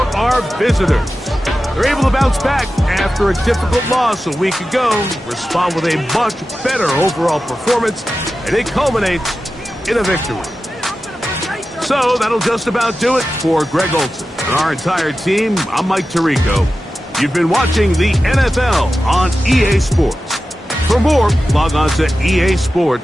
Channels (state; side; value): normal; both; correlation 0.93